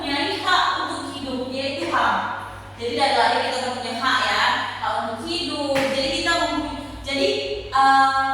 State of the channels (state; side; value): identical; both; correlation 1.00